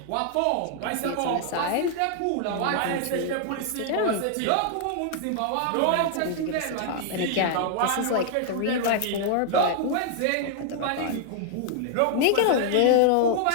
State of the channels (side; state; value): both; different; correlation 0.00